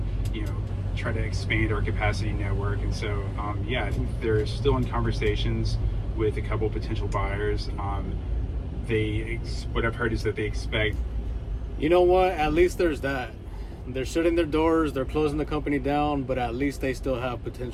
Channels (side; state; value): both; identical; correlation 1.00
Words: try to expand our capacity network? And so, I think they're still in conversations with a couple potential buyers. What I've heard is that they expect. You know what? At least there's that. They're shutting their doors, they're closing the company down, but at least they still have